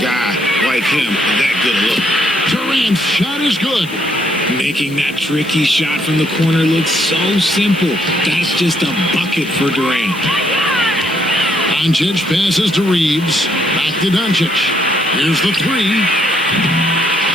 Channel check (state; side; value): noise; left; hiss, 21 dB below the sound